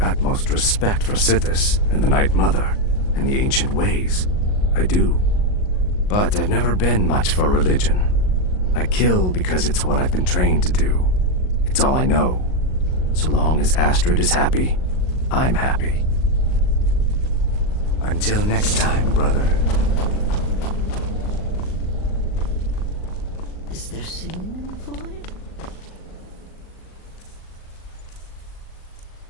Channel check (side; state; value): right; late; 38 ms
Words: respect for Sithis and the Night Mother and the ancient ways. I do. But I've never been much for religion. I kill because it's what I've been trained to do. It's all I know. So long as Astrid is happy, I'm happy. Until next time, brother. Is there singing in the void?